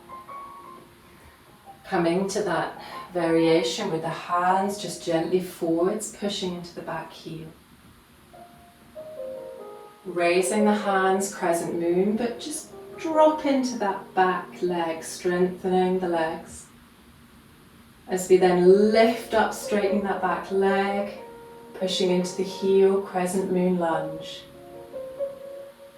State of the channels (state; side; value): identical; both; correlation 1.00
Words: Coming to that variation with the hands just gently forwards, pushing into the back heel. Raising the hands, crescent moon, but just drop into that back leg, strengthening the legs. As we then lift up, straightening that back leg, pushing into the heel, crescent moon lunge.